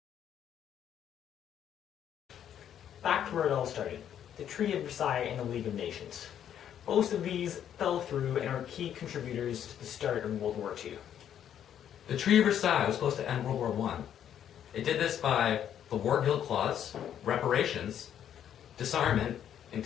Back to where it all started, the Treaty of Versailles and the League of Nations. Most of these fell through and are key contributors to the start of World War II. The Treaty of Versailles was supposed to end World War I. It did this by the War Guilt Clause, reparations, disarmament, and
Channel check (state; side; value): quieter; right; 9.8 dB